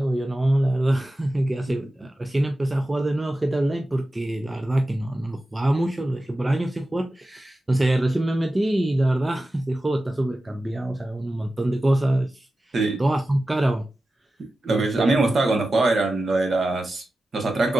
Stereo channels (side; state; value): both; normal; correlation 0.94